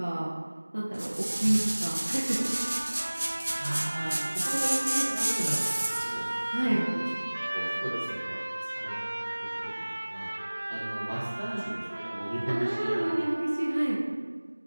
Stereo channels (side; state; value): both; inverted; correlation -1.00